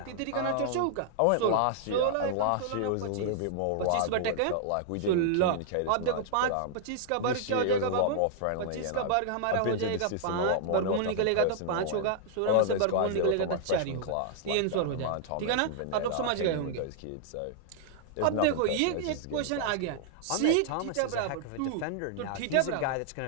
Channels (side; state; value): both; different; correlation -0.01